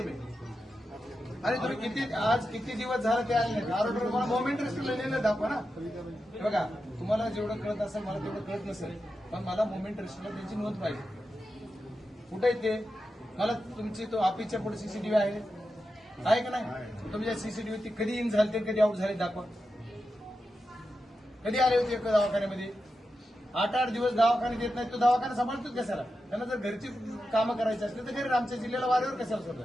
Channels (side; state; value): both; normal; correlation 0.90